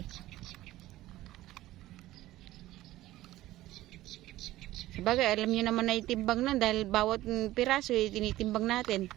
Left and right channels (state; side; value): quieter; left; 15.9 dB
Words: Sabagay, alam niyo naman na itimbang na dahil bawat piraso tinitimbang natin.